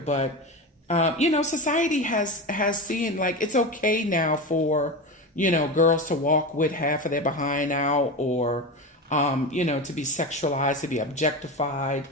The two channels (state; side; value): normal; both; correlation 0.22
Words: society has seen, like, it's okay now for girls to walk with half of their behind out, or to be sexualized, to be objectified,